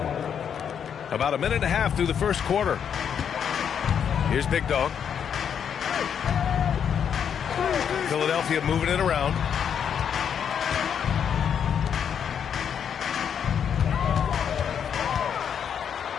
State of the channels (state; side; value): quieter; right; 8.0 dB